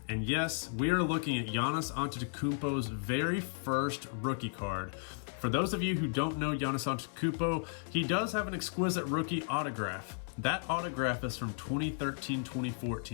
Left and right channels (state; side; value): silent; right; 55 dB below the other